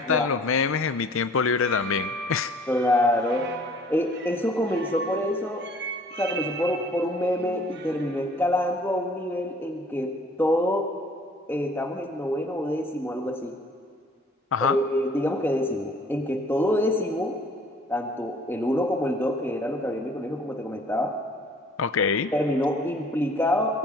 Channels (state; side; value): normal; both; correlation 0.54